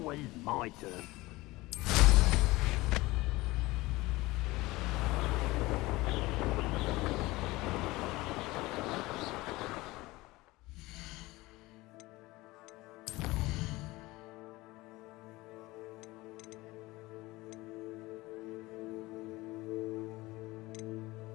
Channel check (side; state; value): right; quieter; 20.3 dB